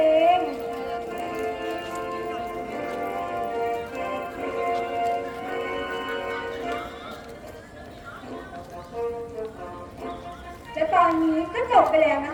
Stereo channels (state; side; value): identical; both; correlation 1.00